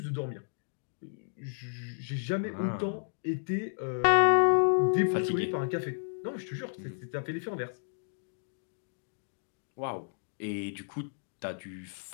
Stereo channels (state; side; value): silent; right; digital silence